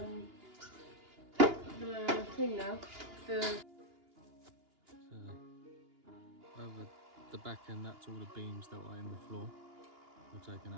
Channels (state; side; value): late; left; 2.9 ms